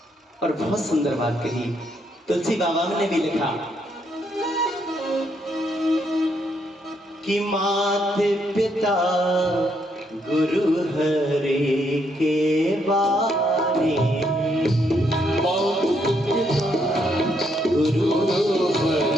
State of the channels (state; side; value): normal; both; correlation 0.75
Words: और बहुत सुंदर बात कही तुलसी बाबा ने भी लिखा कि माता पिता गुरु हरि के बारे, गुरु